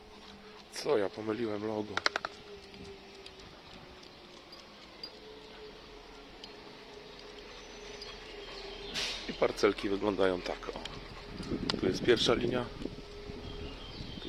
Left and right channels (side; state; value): both; identical; correlation 1.00